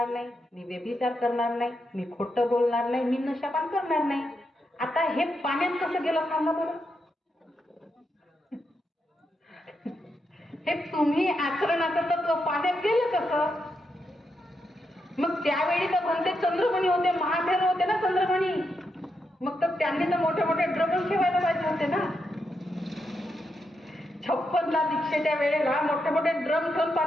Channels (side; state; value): both; normal; correlation 0.83